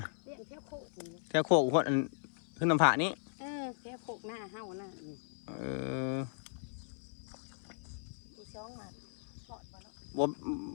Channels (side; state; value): right; silent; 53 dB below the other